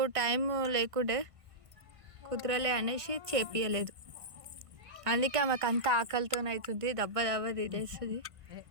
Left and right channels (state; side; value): late; left; 1.6 ms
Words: టైం లేకుండే కుదరలే అనేసి చేపియలేదు. అందుకే ఆమెకు అంత ఆకలితో అవుతుంది, దెబ్బ తినేస్తుంది.